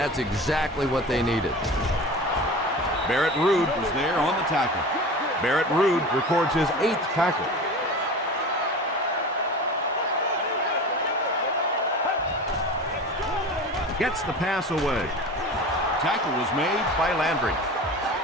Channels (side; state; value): both; normal; correlation 0.34